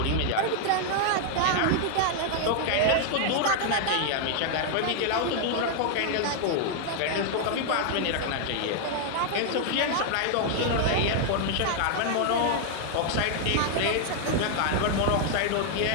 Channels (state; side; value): different; both; correlation 0.00